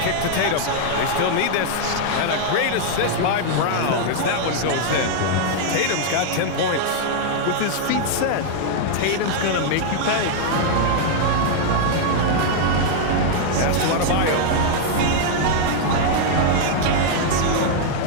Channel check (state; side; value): different; both; correlation -0.01